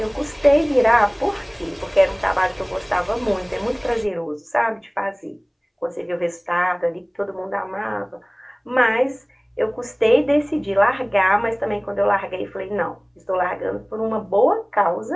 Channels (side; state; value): both; identical; correlation 1.00